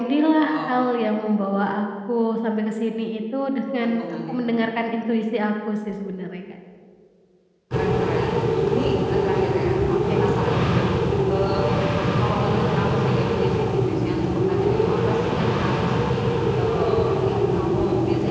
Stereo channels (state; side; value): identical; both; correlation 1.00